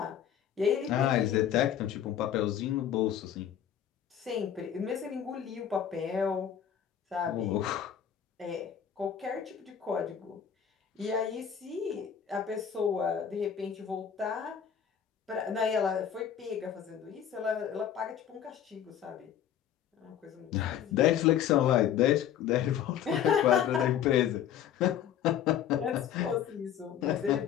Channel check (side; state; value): right; quieter; 9.3 dB